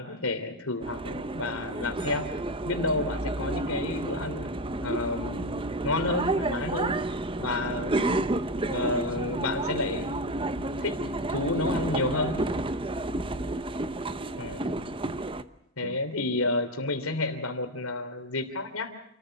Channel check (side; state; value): both; normal; correlation 0.14